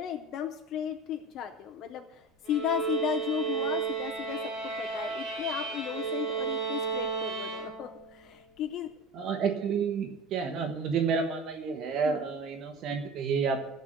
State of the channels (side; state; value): both; normal; correlation 0.31